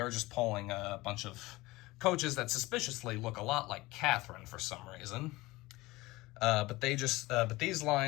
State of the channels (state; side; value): quieter; right; 20.3 dB